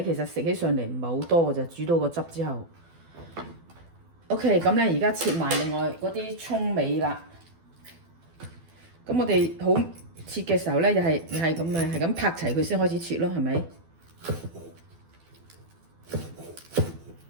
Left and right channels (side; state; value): left; late; 12 ms